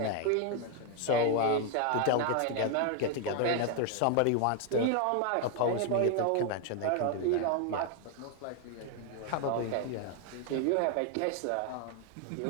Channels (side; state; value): both; different; correlation 0.01